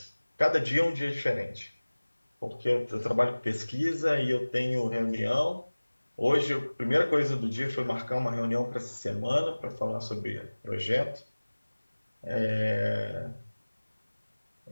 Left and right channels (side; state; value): both; inverted; correlation -1.00